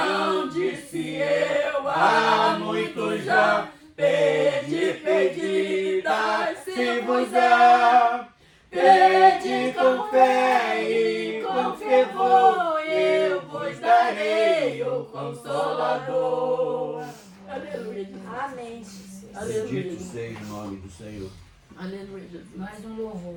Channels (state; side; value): identical; both; correlation 1.00